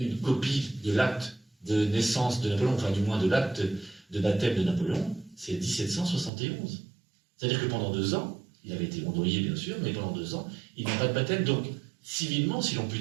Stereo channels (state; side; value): drops out; left; at 6.3 s